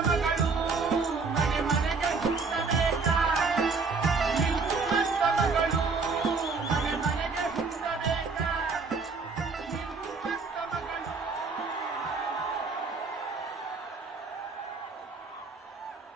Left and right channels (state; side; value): quieter; left; 4.5 dB